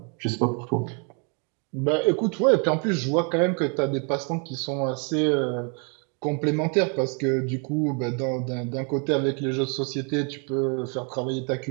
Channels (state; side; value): quieter; left; 37.5 dB